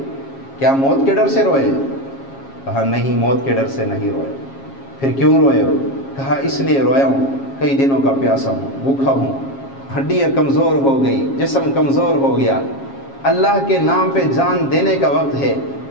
کیا موت کے ڈر سے روئے؟ کہا نہیں، موت کے ڈر سے نہیں روئے۔ پھر کیوں روئے ہو؟ کہا اس لیے رویا ہوں، کئی دنوں کا پیاسا ہوں، بھوکھا ہوں، ہڈیاں کمزور ہو گئی، جسم کمزور ہو گیا، اللہ کے نام پہ جان دینے کا وقت ہے،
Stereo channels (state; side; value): late; right; 7.4 ms